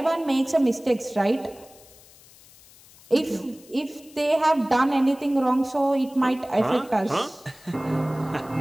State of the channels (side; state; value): left; noise; hiss, 24 dB below the sound